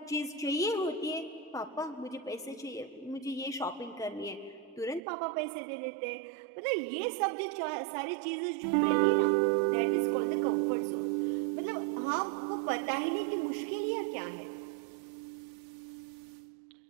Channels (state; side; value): drops out; left; at 5.0 s